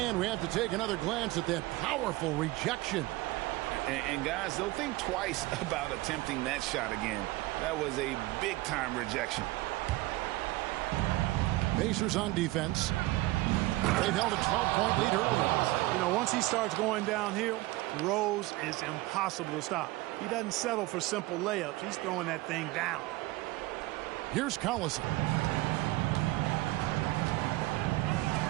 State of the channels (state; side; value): quieter; left; 19.6 dB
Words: we have to take another glance at that powerful rejection. And guys, they'll think twice about attempting that shot again. That was a big-time rejection. Pacers on defense. They've held a 12-point lead early. You know, once he starts going downhill, Rose is impossible to stop. He doesn't settle for simple layups. He's throwing that thing down. Here's Collison.